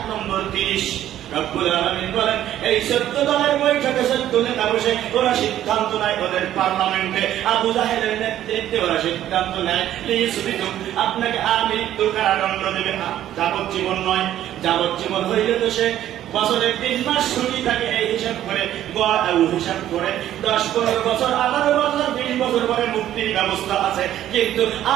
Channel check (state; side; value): quieter; left; 12.2 dB